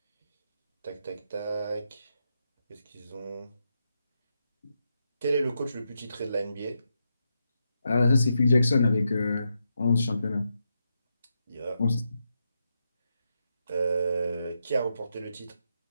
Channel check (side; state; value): both; inverted; correlation -0.85